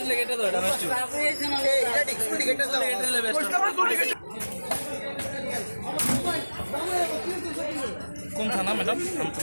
কোন থানা ম্যাডাম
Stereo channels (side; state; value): both; inverted; correlation -1.00